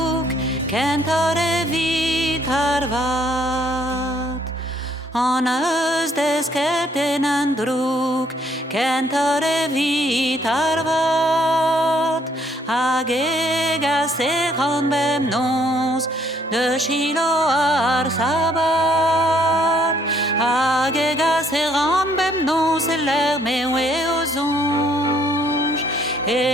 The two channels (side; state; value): both; normal; correlation 0.66